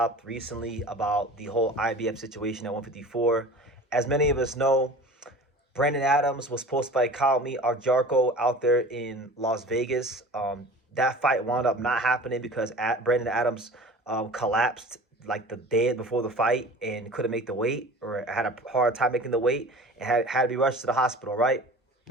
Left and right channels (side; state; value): both; normal; correlation 0.40